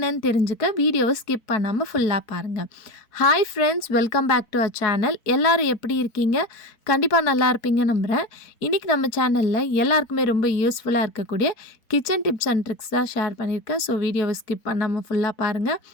தெரிஞ்சுக்க வீடியோவ ஸ்கிப் பண்ணாம ஃபுல்லா பாருங்க. Hi friends, welcome back to our channel. எல்லாரும் எப்படி இருக்கீங்க? கண்டிப்பா நல்லா இருப்பீங்க நம்புறேன். இன்னைக்கு நம்ம சேனல்ல எல்லாருக்குமே ரொம்ப யூஸ்ஃபுல்லா இருக்கக்கூடிய கிச்சன் டிப்ஸ் அண்ட் ட்ரிக்ஸ் தான் ஷேர் பண்ணியிருக்கேன். ஸோ வீடியோவ ஸ்கிப் பண்ணாம ஃபுல்லா பாருங்க.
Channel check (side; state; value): right; late; 4.6 ms